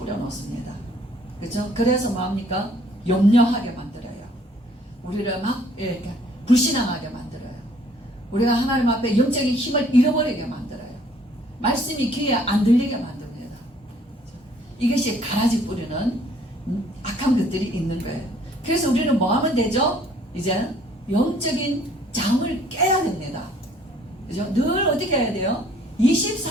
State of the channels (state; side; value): normal; both; correlation 0.60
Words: 그렇죠? 그래서 뭐합니까? 염려하게 만들어요. 우리를 막 이렇게 불신앙하게 만들어요. 우리가 하나님 앞에 영적인 힘을 잃어버리게 만들어요. 말씀이 귀에 안 들리게 만듭니다. 이것이 가라지 뿌리는 악한 것들이 있는 거예요. 그래서 우리는 뭐 하면 되죠? 이제 영적인 잠을 깨야 됩니다. 그죠? 늘 어떻게 해야 돼요?